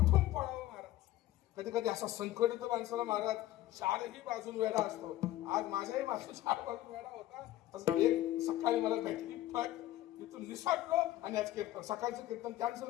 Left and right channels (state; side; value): quieter; right; 14.7 dB